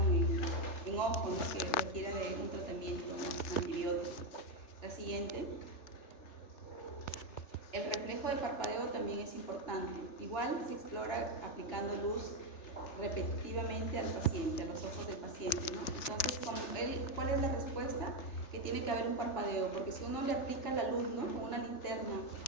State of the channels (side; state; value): right; late; 3.3 ms